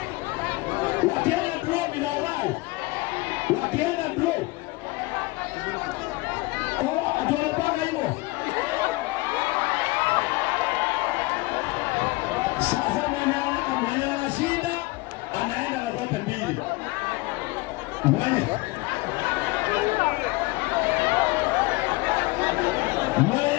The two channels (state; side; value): quieter; right; 23.4 dB